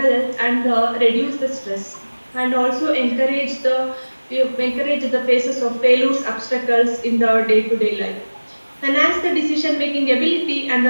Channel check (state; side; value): inverted; both; correlation -1.00